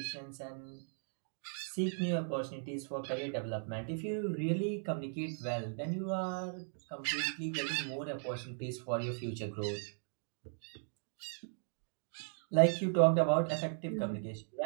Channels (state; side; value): silent; left; digital silence